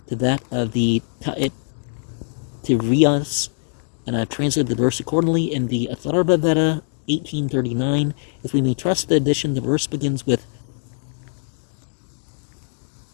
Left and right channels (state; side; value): silent; right; digital silence